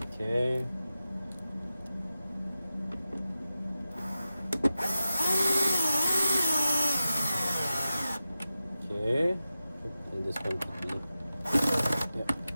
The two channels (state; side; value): inverted; both; correlation -0.93